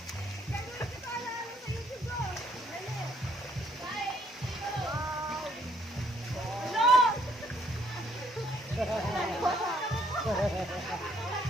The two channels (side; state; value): both; normal; correlation 0.67